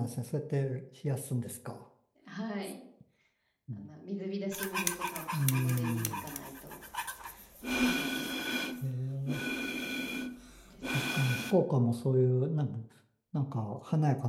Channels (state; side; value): identical; both; correlation 1.00